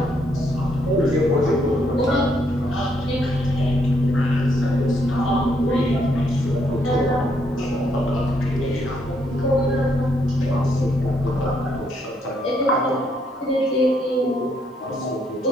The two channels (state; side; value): normal; both; correlation 0.73